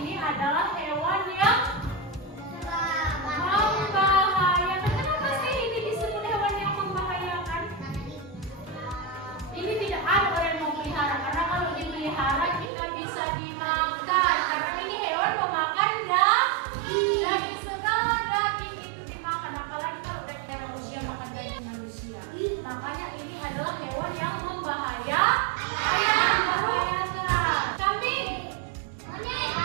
namanya ini adalah hewan yang membahayakan. Kambing,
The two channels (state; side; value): drops out; left; at 12.7 s